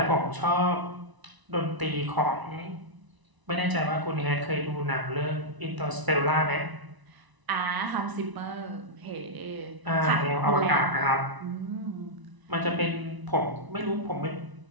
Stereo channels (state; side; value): late; left; 1.0 ms